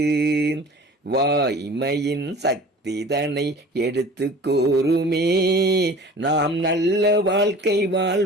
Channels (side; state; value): both; normal; correlation 0.43